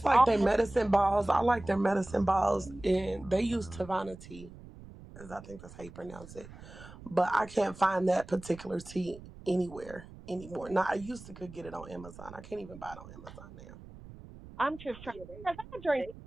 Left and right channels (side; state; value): right; noise; rumble, 17 dB below the sound